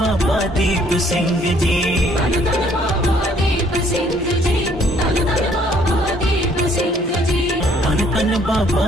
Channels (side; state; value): both; normal; correlation 0.63